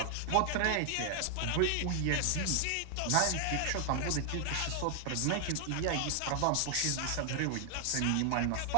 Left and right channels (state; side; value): different; both; correlation 0.00